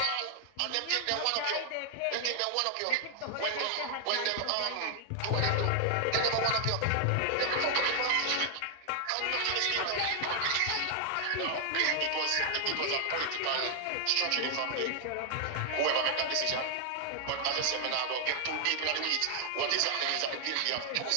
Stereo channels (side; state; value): both; different; correlation 0.00